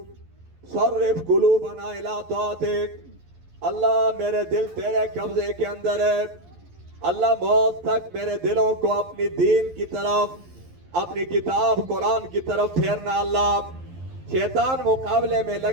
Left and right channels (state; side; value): late; left; 11 ms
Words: صرف قلوبنا الی طاعتک. اللہ میرے دل تیرے قبضے کے اندر ہے, اللہ موت تک میرے دلوں کو اپنی دین کی طرف, اپنی کتاب قرآن کی طرف پھیرنا. اللہ شیطان مقابلے میں